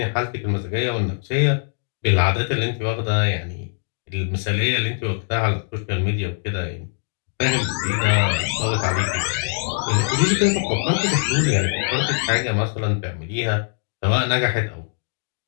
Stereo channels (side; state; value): right; silent; digital silence